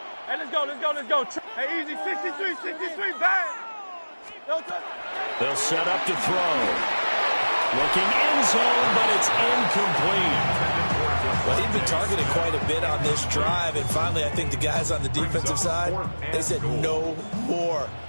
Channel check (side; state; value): both; inverted; correlation -1.00